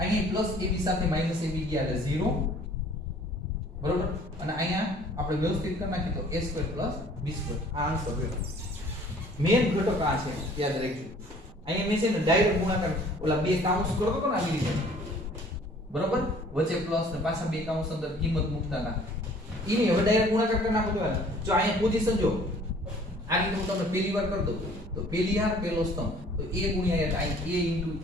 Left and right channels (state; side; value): normal; both; correlation 0.54